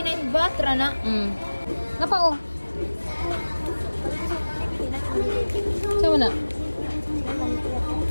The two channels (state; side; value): inverted; both; correlation -1.00